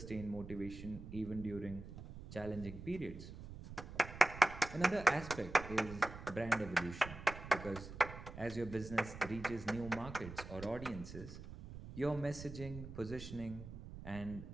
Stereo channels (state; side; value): noise; right; rumble, 12 dB below the sound